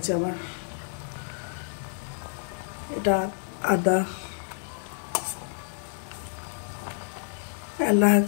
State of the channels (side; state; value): right; silent; digital silence